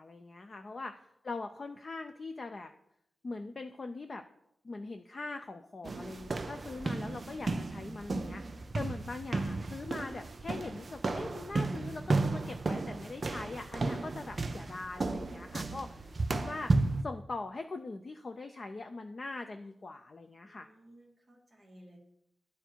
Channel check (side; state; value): both; normal; correlation 0.93